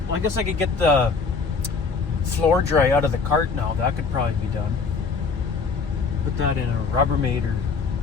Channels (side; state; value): right; quieter; 4.9 dB